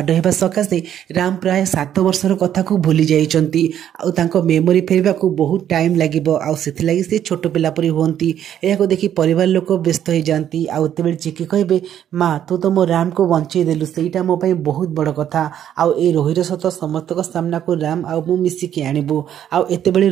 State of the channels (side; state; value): left; quieter; 10.3 dB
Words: ହେବା ସକାଶେ ରାମ ପ୍ରାୟ 7 ବର୍ଷର କଥାକୁ ଭୁଲି ଯାଇଛନ୍ତି ଆଉ ତାଙ୍କ ମେମୋରି ଫେରିବାକୁ ବହୁତ ଟାଇମ୍ ଲାଗିବ ଆଉ ସେଥିଲାଗି ସେ ଛୋଟ ପିଲା ପରି ହୁଅନ୍ତି। ଏହାକୁ ଦେଖି ପରିବାର ଲୋକ ବ୍ୟସ୍ତ ହେଇଯାଆନ୍ତି ଆଉ ଏତେବେଳେ ଚିକି କହିବେ ମା ତୁ ତ ମୋ ରାମକୁ ବଞ୍ଚେଇ ଦେଲୁ, ସେଇଟା ମୋ ପାଇଁ ବହୁତ ବଡ଼ କଥା। ଆଉ ଏ ରୋହିର ସତ ସମସ୍ତଙ୍କ ସାମ୍ନାକୁ ରାମ ଆଉ ମୁଁ ମିଶିକି ଆଣିବୁ। ଆଉ ଏତେବେଳେ